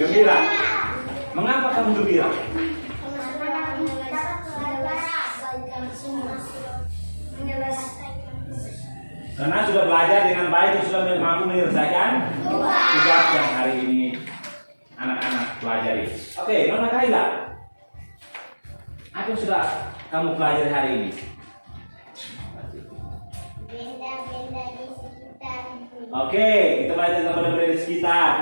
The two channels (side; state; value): both; inverted; correlation -1.00